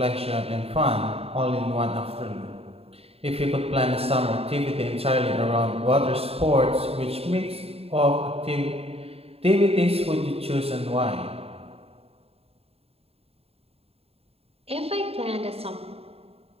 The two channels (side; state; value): left; late; 0.29 ms